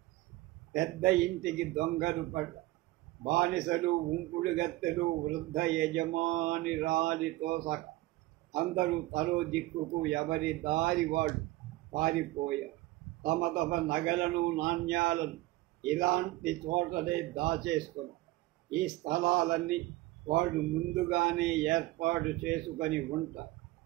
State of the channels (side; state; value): left; quieter; 18.7 dB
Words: పెద్ద ఇంటికి దొంగలు పడ్డ, బానిసలు, ఉంపుడు గత్తెలు, వృద్ధ యజమాని రాలితో సహా అందరూ తలో దిక్కుకు ఎవరి దారి వాడు పారిపోయారు. తమ తమ నగలను, నాణ్యాలను ఇలాంటి చోటనే దాచేసుకున్నారు. ఈ స్థలాలన్నీ వాళ్ళు ముందుగానే ఏర్పాటు చేసుకొని ఉంటారు.